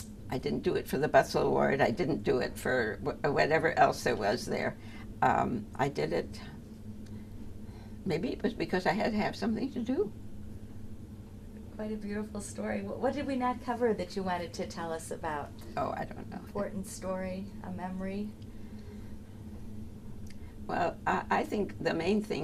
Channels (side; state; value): both; identical; correlation 1.00